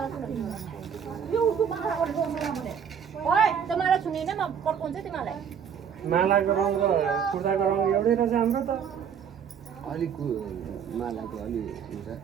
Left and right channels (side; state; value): left; quieter; 7.6 dB